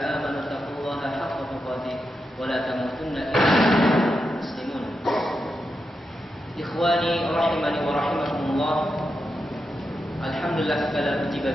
اتقوا الله حق تقاته ولا تموتن إلا وأنتم مسلمون Ikhwani rahimani wa rahimakumullah. Alhamdulillah, segala puji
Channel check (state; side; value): normal; both; correlation 0.87